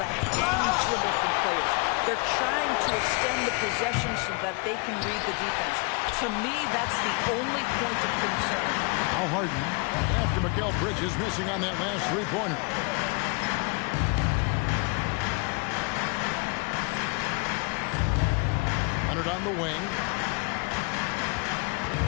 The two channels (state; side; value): quieter; right; 31.3 dB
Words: hand dribble from players. They're trying to extend the possession so that they can read the defense. To me, that's the only point of concern. Now Harden, after Mikal Bridges missing on that last three-pointer. Leonard on the wing.